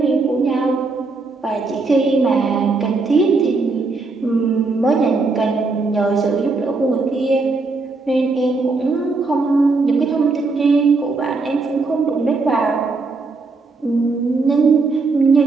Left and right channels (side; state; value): left; quieter; 3.9 dB